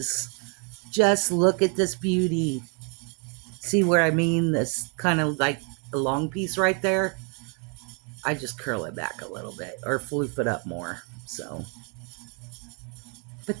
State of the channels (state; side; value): quieter; left; 37.8 dB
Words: Just look at this beauty. See where I mean? This kind of like a long piece right there. I just curl it back a little bit or floof it up more. So,